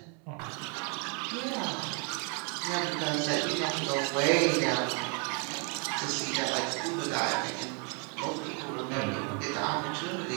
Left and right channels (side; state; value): left; quieter; 37.2 dB